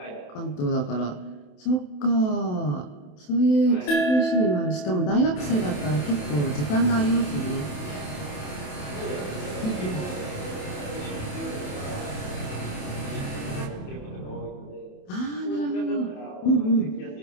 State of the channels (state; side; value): late; right; 27 ms